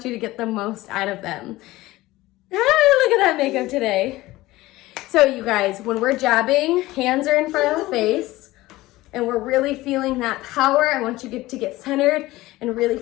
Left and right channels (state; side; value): quieter; right; 18.1 dB